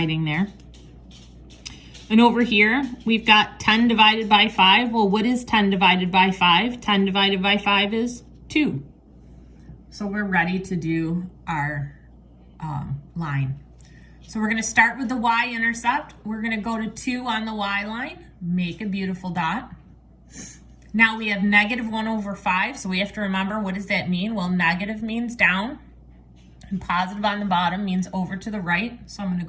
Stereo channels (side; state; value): both; identical; correlation 1.00